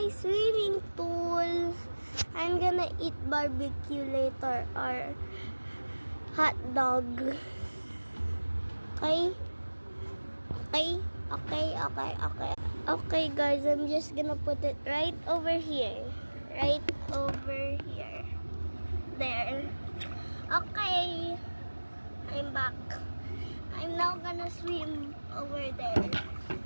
swimming pool. I'm gonna eat barbecue later or hot dog. Okay? Okay guys, I'm just gonna put it right over here. Right over here. There. Okay. I'm back. I'm now gonna swim over there.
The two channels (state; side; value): inverted; both; correlation -1.00